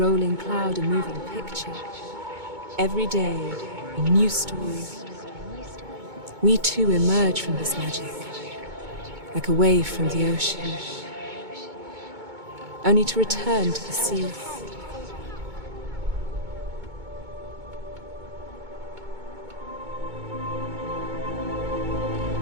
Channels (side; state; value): left; late; 2.2 ms